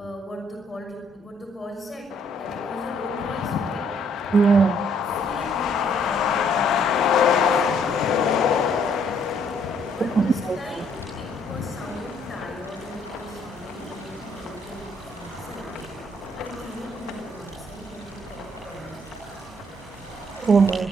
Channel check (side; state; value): both; normal; correlation 0.66